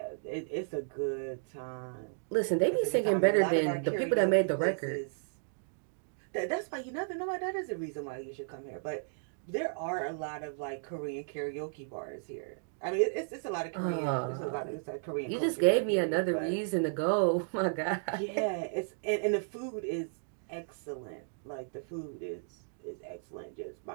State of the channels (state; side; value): silent; left; digital silence